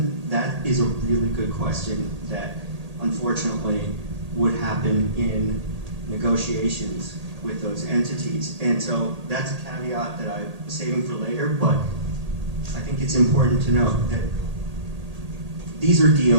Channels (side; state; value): left; late; 1.8 ms